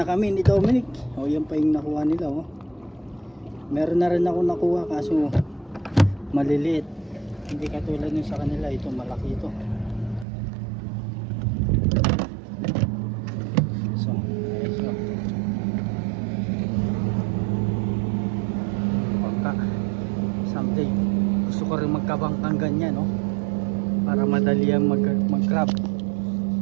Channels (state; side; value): drops out; left; at 10.2 s